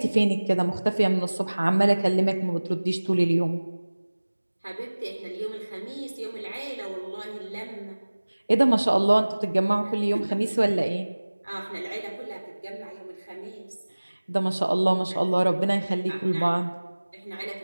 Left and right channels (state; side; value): inverted; both; correlation -1.00